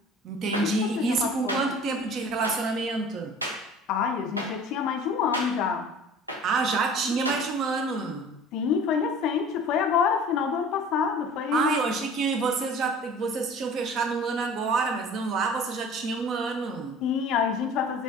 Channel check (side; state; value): both; normal; correlation 0.44